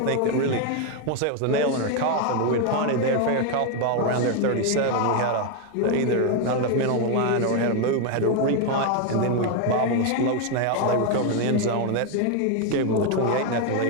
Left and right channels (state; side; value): different; both; correlation 0.01